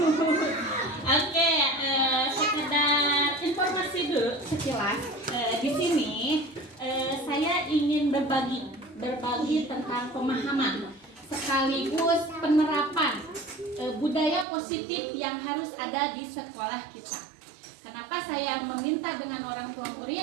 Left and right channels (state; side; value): drops out; left; at 14.5 s